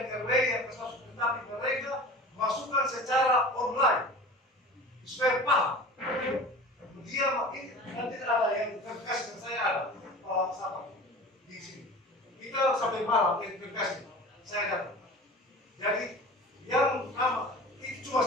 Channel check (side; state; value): both; normal; correlation 0.38